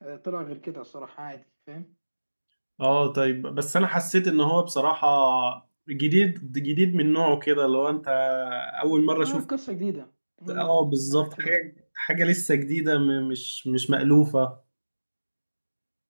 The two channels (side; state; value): both; inverted; correlation -1.00